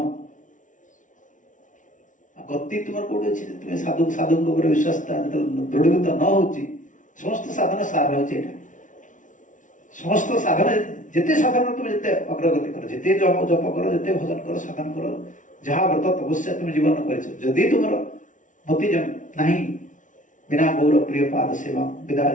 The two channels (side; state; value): right; late; 0.37 ms